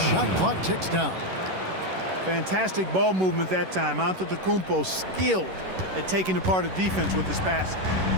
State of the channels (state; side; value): late; left; 11 ms